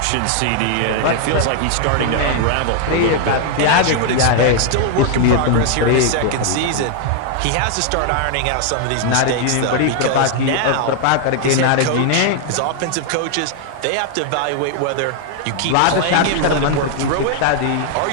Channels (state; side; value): different; both; correlation 0.00